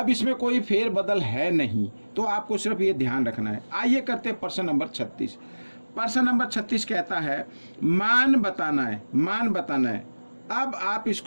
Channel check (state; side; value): inverted; both; correlation -1.00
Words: इसमें कोई फेर बदल है नहीं, तो आपको सिर्फ ये ध्यान रखना है। आइए करते हैं प्रश्न नंबर 36। प्रश्न नंबर 36 कहता है मान बताना है, मान बताना है। अब आप